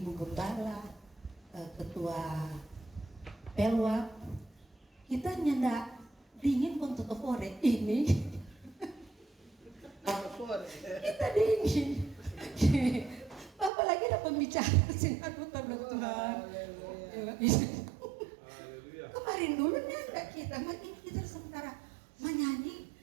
gembala, ketua pelwak. Kita nyendak dingin untuk ore ini. Kita dingin. Apalagi ada pembicara sinar Tuhan. Kemarin dulu nyendak kita, makin kita sementara menyanyi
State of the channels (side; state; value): left; drops out; at 13.7 s